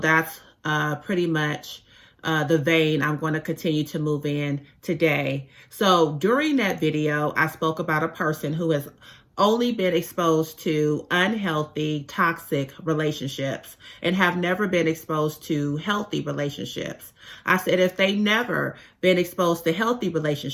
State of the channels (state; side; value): identical; both; correlation 1.00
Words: pretty much the vein I'm going to continue to move in today. So during that video, I spoke about a person who has only been exposed to unhealthy, toxic relationships and have never been exposed to healthy relationships. I said if they never been exposed to healthy